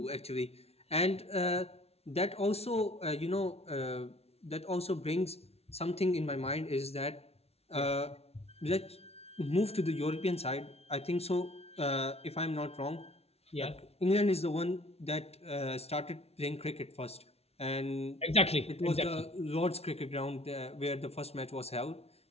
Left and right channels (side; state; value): right; late; 0.30 ms